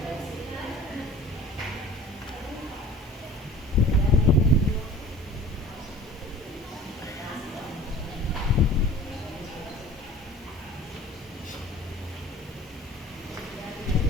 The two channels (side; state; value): both; normal; correlation 0.45